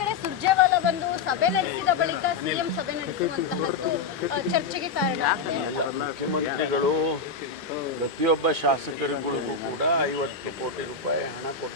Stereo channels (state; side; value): quieter; right; 4.9 dB